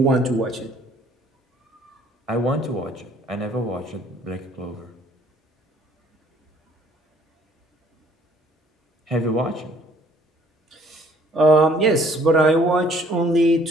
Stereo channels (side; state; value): both; normal; correlation 0.60